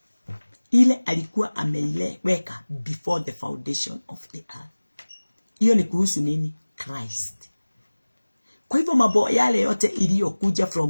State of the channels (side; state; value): both; inverted; correlation -1.00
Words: ile alikuwa ameiweka before the foundation of the earth. Hiyo ni kuhusu nini? Christ. Kwa hivyo mambo yale yote iliyokuja